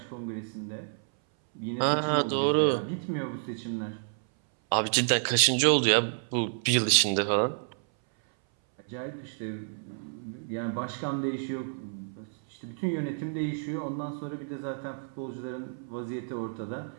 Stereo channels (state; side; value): silent; left; 58 dB below the other